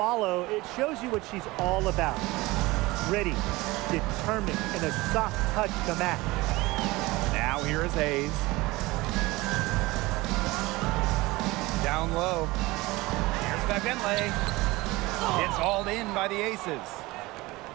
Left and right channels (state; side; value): quieter; left; 21.0 dB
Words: it shows you what she's all about. Ready, determined, and a soft touch to match. Now here is Hayes. Down low. Here's Bentley. It's hauled in by the Aces.